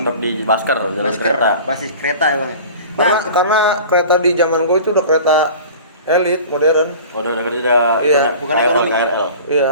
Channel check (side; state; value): both; inverted; correlation -0.40